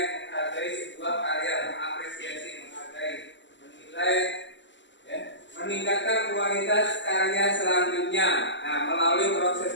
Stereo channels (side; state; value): right; late; 0.54 ms